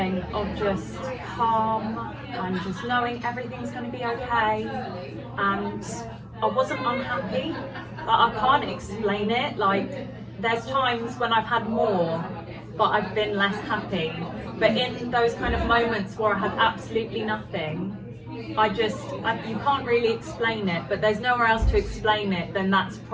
of just calm and just knowing everything's going to be okay. And I wasn't unhappy, but I can't explain it. Like, there's times when I've had more, but I've been less happy. But in those kind of moments where I had absolutely nothing, you can't really explain it, but there's nowhere else to explain it, then that's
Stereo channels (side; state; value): both; identical; correlation 1.00